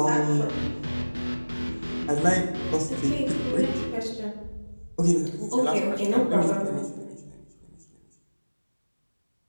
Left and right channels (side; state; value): both; inverted; correlation -1.00